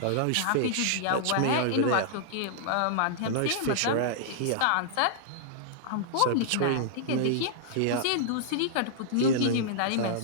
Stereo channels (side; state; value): both; different; correlation -0.01